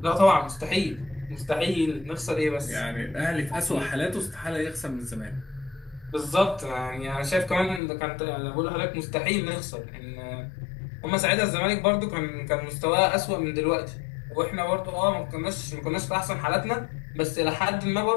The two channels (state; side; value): drops out; right; at 7.8 s